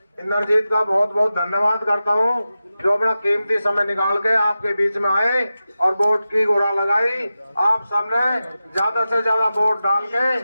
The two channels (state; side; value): inverted; both; correlation -0.93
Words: इंद्रजीत का बहुत बहुत धन्यवाद करता हूं, जो अपना कीमती समय निकाल के आपके बीच में आए और वोट की गुरा लगाई। आप सबने ज्यादा से ज्यादा वोट डाल के